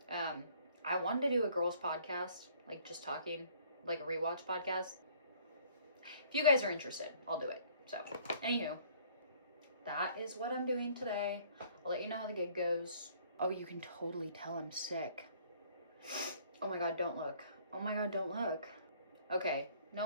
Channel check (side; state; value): both; inverted; correlation -0.58